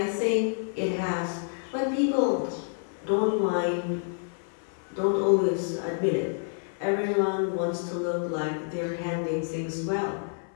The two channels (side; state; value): right; silent; 59 dB below the other